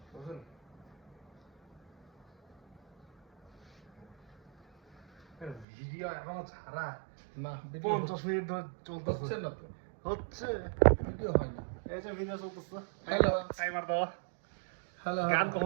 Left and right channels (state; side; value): drops out; left; at 5.7 s